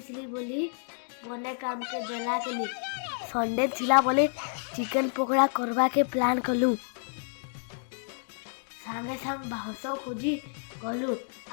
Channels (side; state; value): right; silent; 58 dB below the other